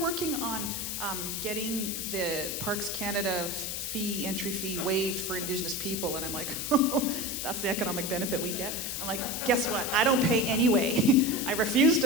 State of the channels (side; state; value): left; noise; hiss, 4 dB below the sound